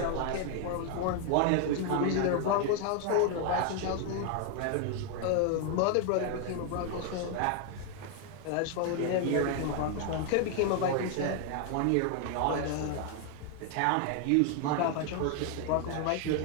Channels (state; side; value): different; both; correlation 0.00